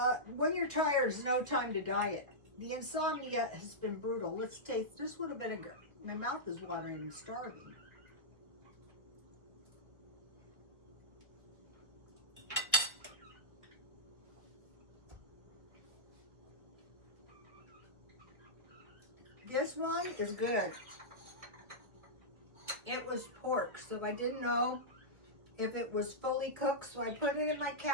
When you're tired, there's no time to diet. The insomnia has been brutal. Let's taste this one a vinegar. My mouth is watering and starving. This one is good. It was pork, so I didn't know if it was fully cooked, so I put it in my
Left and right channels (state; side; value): late; left; 1.5 ms